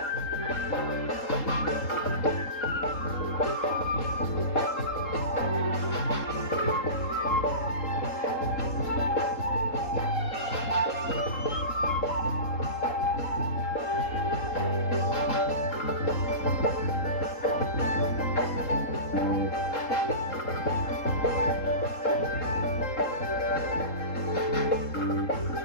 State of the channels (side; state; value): right; late; 3.8 ms